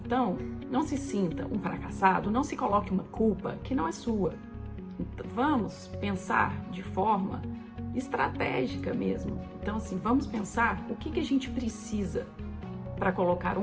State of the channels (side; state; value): both; identical; correlation 1.00